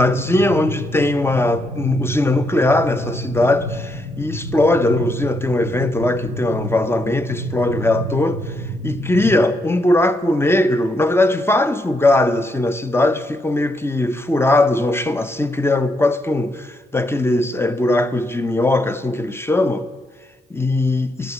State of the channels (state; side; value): normal; both; correlation 0.78